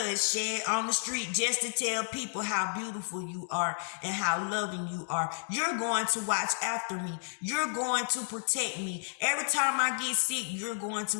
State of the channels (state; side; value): silent; right; 57 dB below the other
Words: shed on the street just to tell people how beautiful you are and how loving you are. You're going to watch after me. You're going to protect me. Every time I get sick, you're going